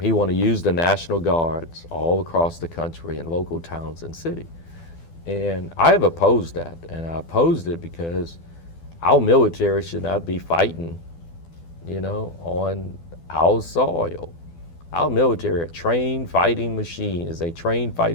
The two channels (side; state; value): right; late; 12 ms